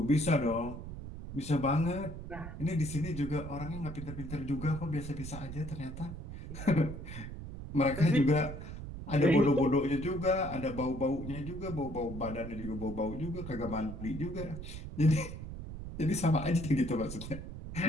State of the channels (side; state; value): right; noise; rumble, 9 dB below the sound